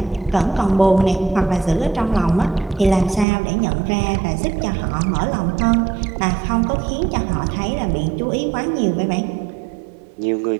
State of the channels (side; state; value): left; drops out; at 3.2 s